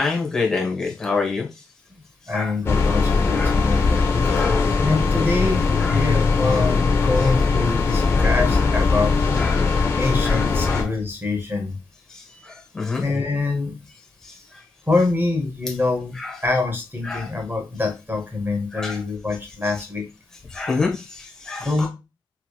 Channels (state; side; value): quieter; right; 3.7 dB